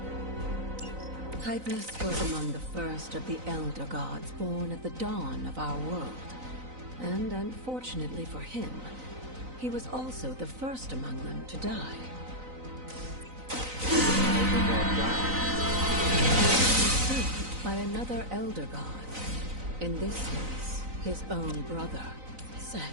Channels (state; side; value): late; left; 3.9 ms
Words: Hypus was among the first of the Elder Gods born at the dawn of our world. And unfortunately for him, he was also the first among them to die. Saved by another Elder God. In this case, his own brother,